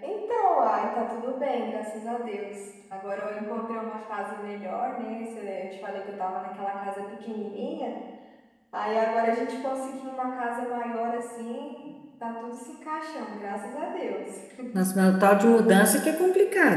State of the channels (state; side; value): identical; both; correlation 1.00